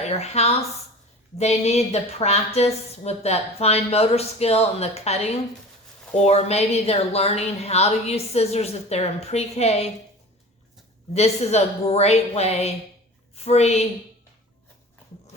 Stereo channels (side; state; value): both; normal; correlation 0.38